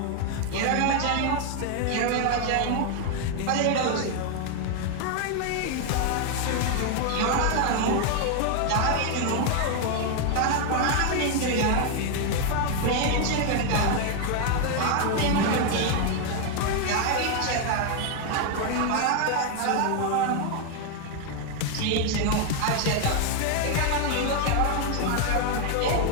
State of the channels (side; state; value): both; different; correlation 0.01